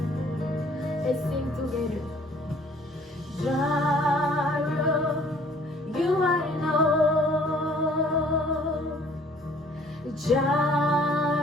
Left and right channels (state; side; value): normal; both; correlation 0.56